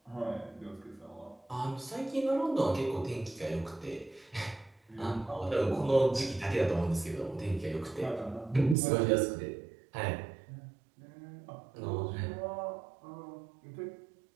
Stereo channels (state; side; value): drops out; left; at 8.8 s